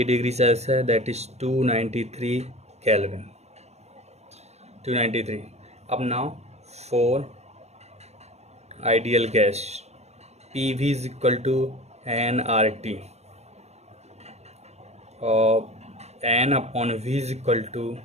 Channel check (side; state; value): left; late; 0.31 ms